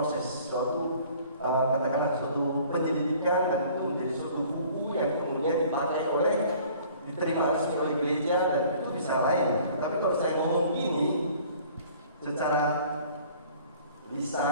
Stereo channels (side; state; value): both; inverted; correlation -0.52